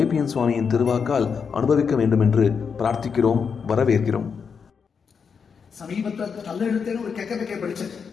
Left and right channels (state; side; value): quieter; right; 6.2 dB